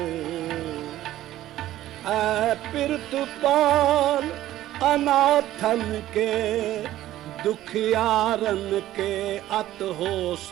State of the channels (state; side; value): quieter; left; 14.1 dB